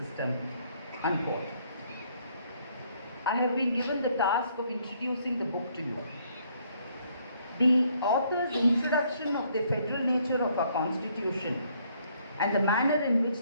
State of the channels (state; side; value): inverted; both; correlation -0.67